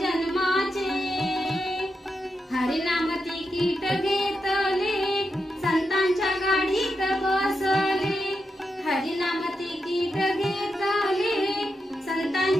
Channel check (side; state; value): both; normal; correlation 0.86